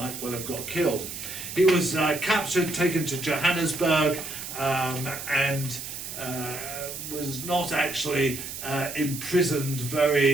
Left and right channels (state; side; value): noise; right; hiss, 8 dB below the sound